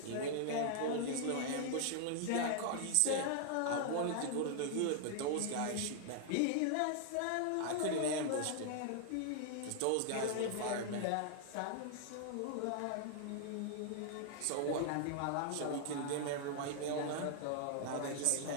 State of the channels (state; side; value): different; both; correlation 0.00